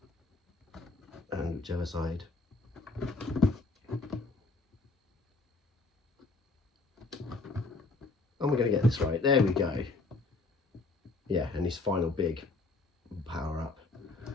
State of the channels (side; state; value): right; quieter; 3.4 dB